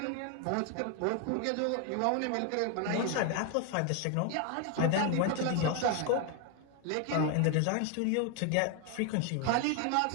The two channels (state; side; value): different; both; correlation 0.01